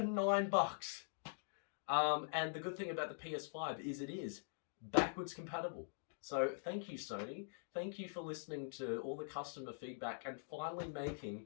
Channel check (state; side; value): silent; right; digital silence